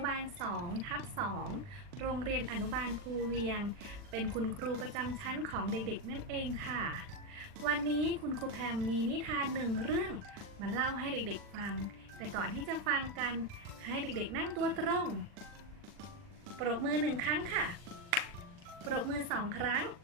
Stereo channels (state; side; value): late; left; 39 ms